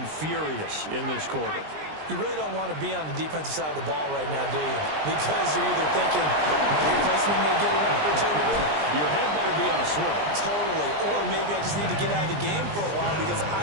furious in this quarter. You really don't want to be on the defensive side of the ball right now, do you? Because you're either thinking, my replacement may get an opportunity. Your head better be on a swivel. Totally. Or maybe I just need to get out of the game for a while because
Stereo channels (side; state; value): left; late; 20 ms